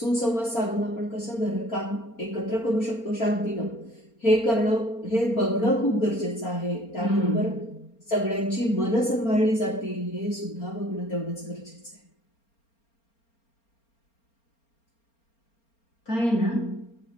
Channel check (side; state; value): right; late; 4.3 ms